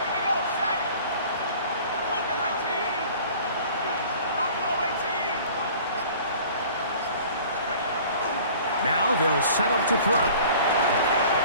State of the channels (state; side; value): inverted; both; correlation -0.47